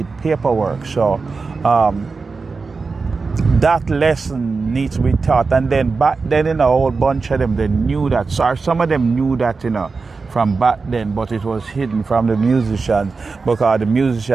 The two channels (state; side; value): quieter; left; 4.4 dB